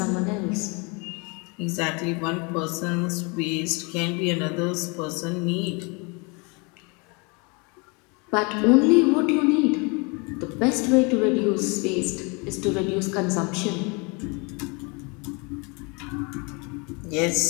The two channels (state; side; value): quieter; right; 30.8 dB